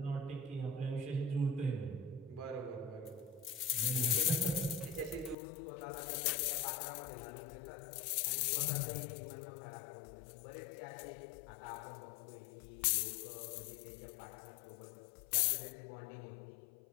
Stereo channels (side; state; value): right; drops out; at 5.4 s